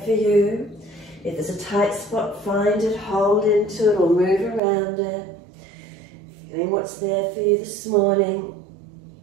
for you? If there's a tight spot, find it, hold into it or move around it. Feeling what's there for you this morning.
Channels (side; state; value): left; drops out; at 4.6 s